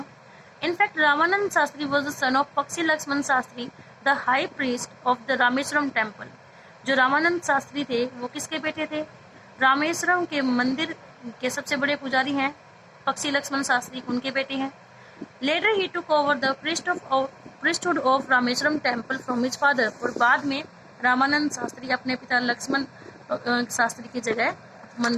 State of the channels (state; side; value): identical; both; correlation 1.00